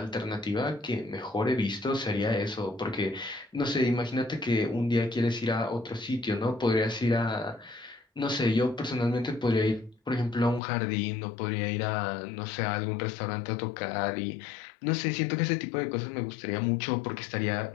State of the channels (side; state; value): right; drops out; at 10.6 s